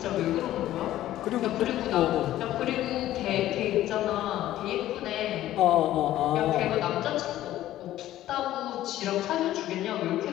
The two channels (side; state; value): right; quieter; 13.8 dB